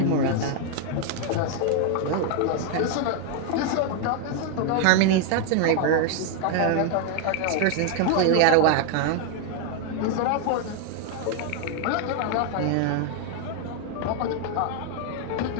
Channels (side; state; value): both; different; correlation 0.00